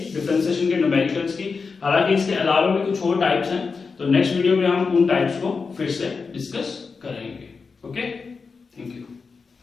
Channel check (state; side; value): quieter; right; 4.9 dB